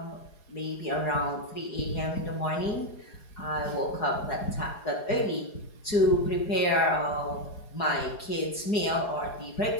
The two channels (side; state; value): right; late; 4.8 ms